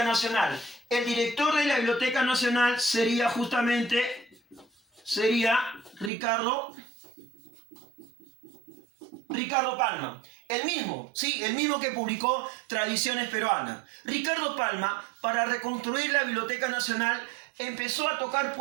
Nacional? El director de la Biblioteca Nacional sería Ricardo Palma. El mismo que publicó Tradiciones Peruanas. Ricardo Palma, para reconstruir la Biblioteca Nacional, empezó a tocar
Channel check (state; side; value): drops out; left; at 6.1 s